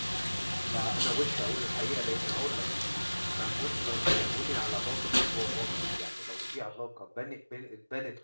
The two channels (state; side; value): inverted; both; correlation -1.00